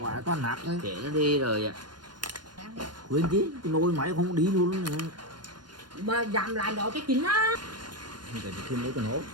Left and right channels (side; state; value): left; late; 0.71 ms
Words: quá toàn nát đấy. Để nó đi rồi ạ. Quên chứ, cái nồi máy không đi luôn nữa. mà dặm lại đó cái chính á. Để thêm mấy con hố.